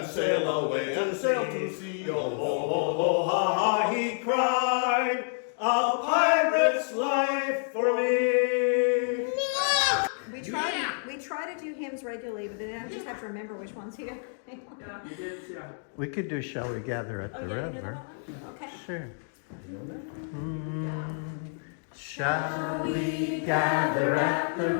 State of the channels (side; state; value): right; silent; 59 dB below the other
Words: sail away and sail to sea, yo-ho, ha, ha, he cried, a pirate's life for me. We try to do hymns regularly, but then I just have to remember which ones he did. We could do Shall We Gather at the River. Okay. Sure. Shall we gather at the